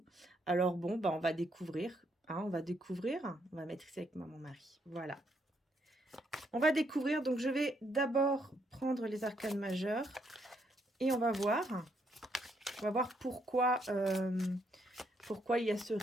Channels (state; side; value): normal; both; correlation 0.74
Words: Alors bon, on va découvrir, hein, on va découvrir. On va mettre ici avec mon mari. Voilà. On va découvrir, donc je vais d'abord prendre les arcanes majeures et on va voir. On va voir pourquoi, pourquoi il y a ce